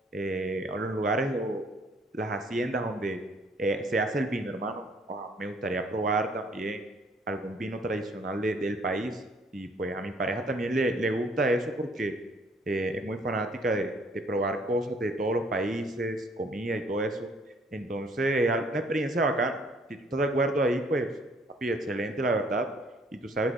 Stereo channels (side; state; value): both; normal; correlation 0.61